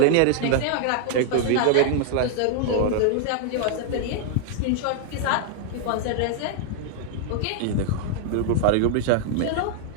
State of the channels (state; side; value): different; both; correlation 0.00